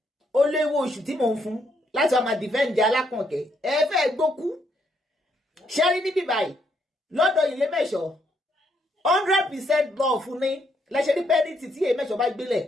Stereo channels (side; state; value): both; normal; correlation 0.74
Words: ó léwó oṣù tí mò ń fún láti ọmọ dìfẹ́ǹdì alákànkẹ́ ẹ fẹ́ gbókú ṣẹ́rí níbí báyìí lọ́dọ̀ ilé mẹ́ṣọ́ 100% love fún ní lẹ́ṣẹ̀ ní pẹ́ẹ́nìtì tí èyí mẹ́ṣọ́ bá gbélẹ̀